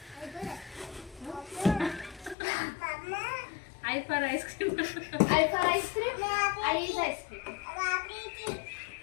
I for ice cream. I for ice cream. I is ice cream.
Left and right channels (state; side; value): drops out; right; at 2.4 s